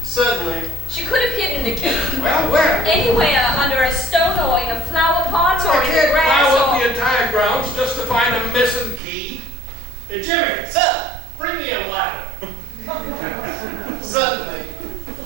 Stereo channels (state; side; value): drops out; left; at 9.0 s